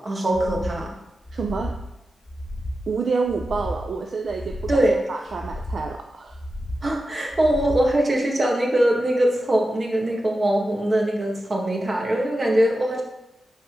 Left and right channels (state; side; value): normal; both; correlation 0.91